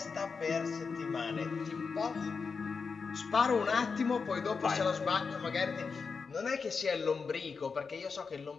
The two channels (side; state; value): right; quieter; 5.1 dB